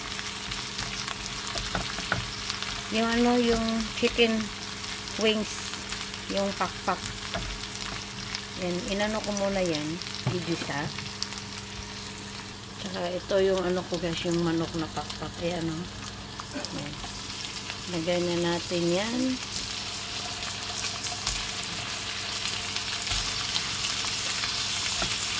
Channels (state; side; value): identical; both; correlation 1.00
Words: Yung ano, yung chicken wings. Yung pakpak. Yan, inano ko muna yan. Igisa. Tsaka ito yung ano ko guys, yung manok na pakpak. Ayan o. Yan. Lagay na natin yan.